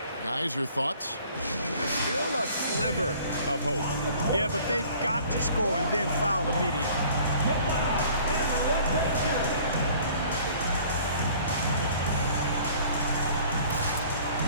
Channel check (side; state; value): both; inverted; correlation -0.52